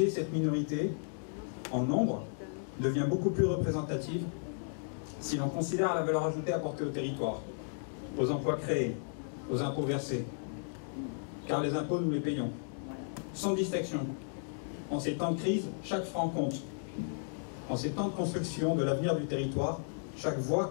est, cette minorité, en nombre, devient beaucoup plus représentative si l'on considère la valeur ajoutée apportée au territoire, aux emplois créés, aux impôts versés. Car les impôts, nous les payons, sans distinction. En ces temps de crise, chaque franc compte. En ces temps de construction de l'avenir du territoire, chaque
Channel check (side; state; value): right; silent; digital silence